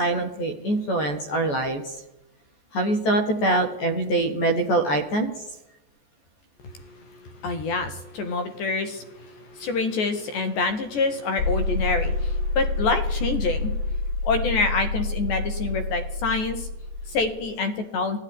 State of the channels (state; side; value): late; right; 14 ms